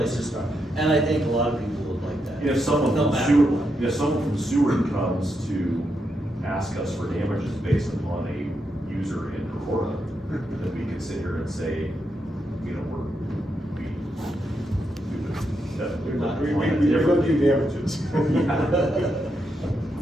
to start, and I think a lot of people would like that. If someone No from matter sewer, what. if someone from sewer comes to ask us for damages based upon a user in Aurora, then we could sit here and say, you know, we would definitely. We will do damages.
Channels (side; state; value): both; normal; correlation 0.83